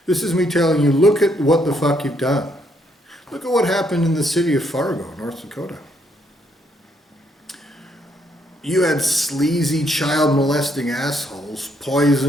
This is me telling you, look at what the fuck you've done. Look at what happened in the city of Fargo, North Dakota. You had sleazy child molesting assholes,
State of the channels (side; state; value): both; normal; correlation 0.72